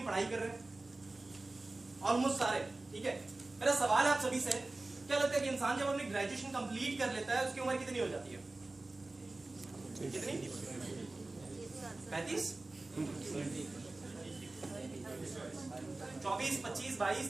पढ़ाई कर रहे हैं? ऑलमोस्ट सारे, ठीक है। मेरा सवाल है आप सभी से, क्या लगता है कि इंसान जब अपनी ग्रेजुएशन कंप्लीट कर लेता है उसकी उम्र कितनी हो जाती है? कितनी? 35? 24, 25, 22,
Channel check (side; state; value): left; quieter; 3.1 dB